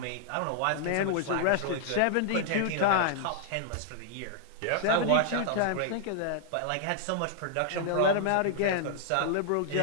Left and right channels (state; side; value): different; both; correlation -0.01